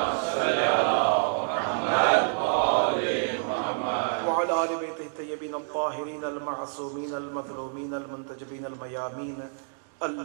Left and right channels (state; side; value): silent; left; digital silence